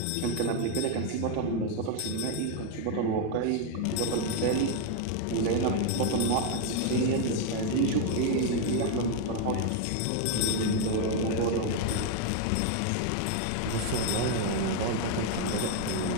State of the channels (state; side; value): different; both; correlation 0.01